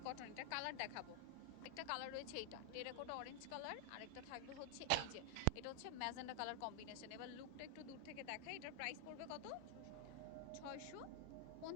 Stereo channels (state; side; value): different; both; correlation 0.00